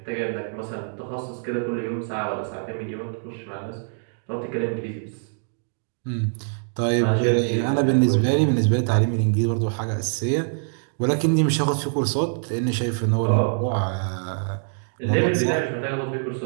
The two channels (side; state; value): left; silent; digital silence